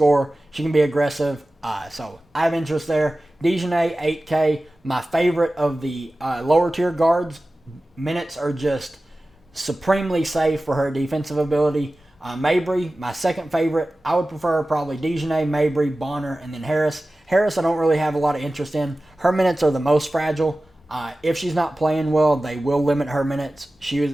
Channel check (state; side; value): normal; both; correlation 0.96